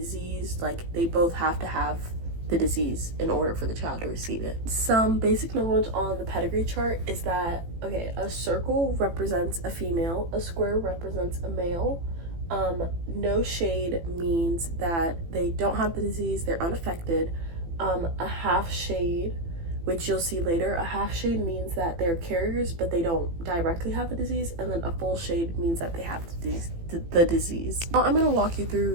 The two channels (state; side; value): late; left; 18 ms